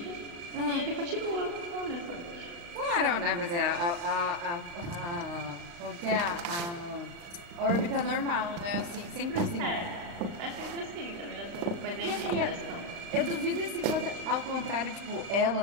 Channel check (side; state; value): left; late; 35 ms